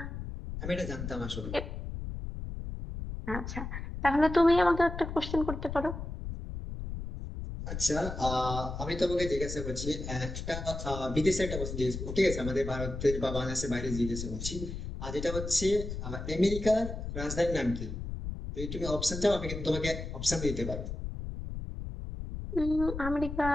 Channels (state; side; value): noise; left; rumble, 6 dB below the sound